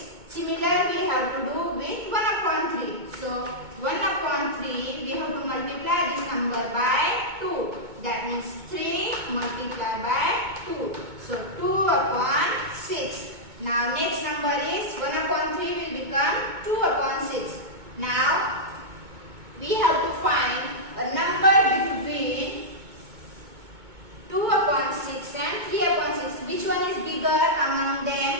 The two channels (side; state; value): left; late; 2.2 ms